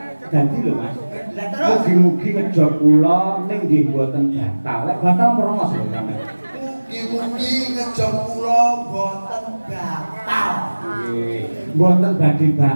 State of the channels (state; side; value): inverted; both; correlation -1.00